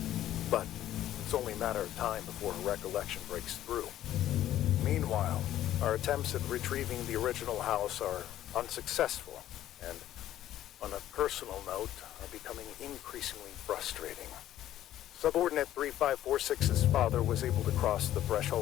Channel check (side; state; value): right; quieter; 12.7 dB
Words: but it's only a matter of time before her recollection breaks through. Meanwhile, our attempts at retrieving the original house are unsuccessful, and, on a personal note, are becoming increasingly frustrating. Subordinate 3546's father was able to cross the